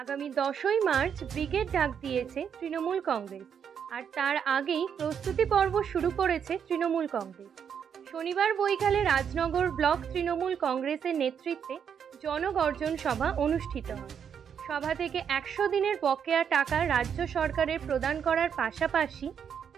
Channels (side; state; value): left; quieter; 7.7 dB